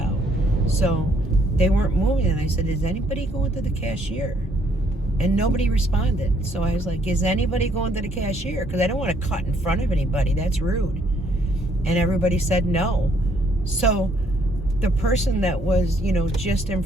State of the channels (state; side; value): normal; both; correlation 0.67